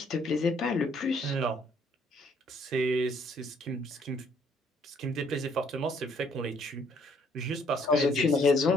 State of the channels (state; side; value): normal; both; correlation 0.65